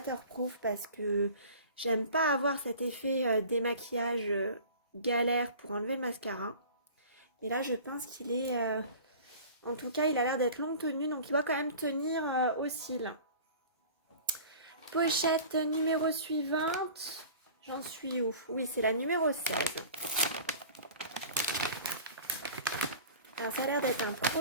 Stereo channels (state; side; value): inverted; both; correlation -0.41